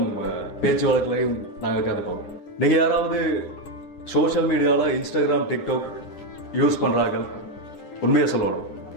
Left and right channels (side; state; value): right; late; 9.9 ms